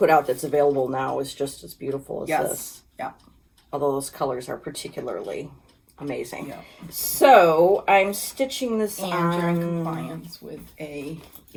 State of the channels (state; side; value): identical; both; correlation 1.00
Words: out that's available now is just as beautiful as Yes. this. Yeah. Although those colors are particularly amazing. Yeah. So I'm stitching this And on... you're in compliance with a